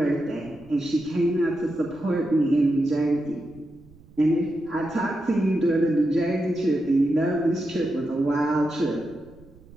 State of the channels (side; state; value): right; noise; rumble, 25 dB below the sound